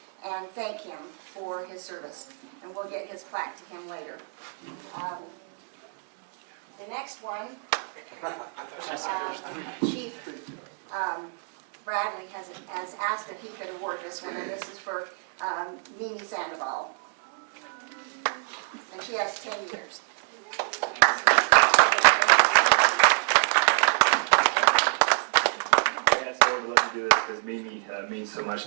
and thank him for his service. And we'll get his plaque to him later. The next one, Chief Bradley has asked if he could award this one, and this is for Mimi Sandoval. And she has 10 years. I asked Laura to let me do this because Mimi means so much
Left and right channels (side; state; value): left; silent; 60 dB below the other